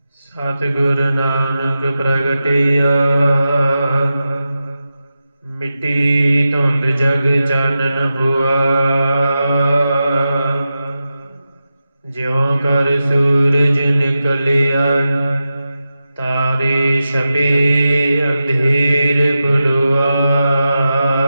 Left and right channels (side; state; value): both; inverted; correlation -0.92